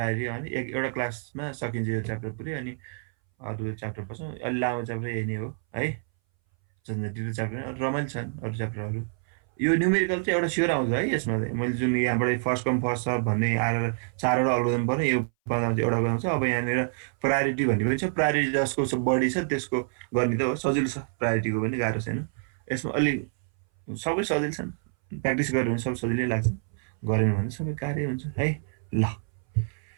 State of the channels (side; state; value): left; silent; 59 dB below the other